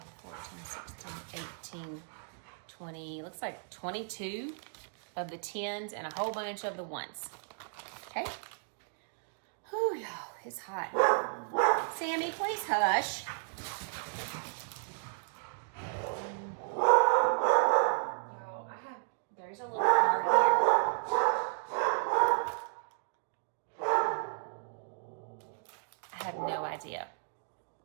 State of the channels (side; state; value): left; silent; digital silence